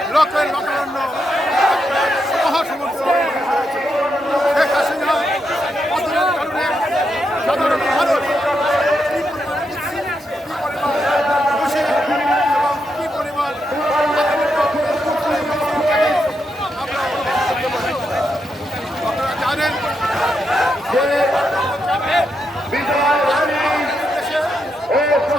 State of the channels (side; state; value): both; normal; correlation 0.82